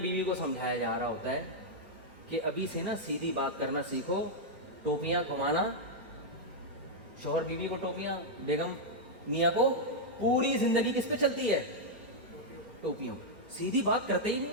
کو سمجھایا جا رہا ہوتا ہے کہ ابھی سے نا سیدھی بات کرنا سیکھو. ٹوپیاں گھمانا، شوہر بیوی کو ٹوپیاں، بیگم میاں کو، پوری زندگی کس پہ چلتی ہے؟ ٹوپیاں. سیدھی بات کرتے ہی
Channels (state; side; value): late; left; 2.3 ms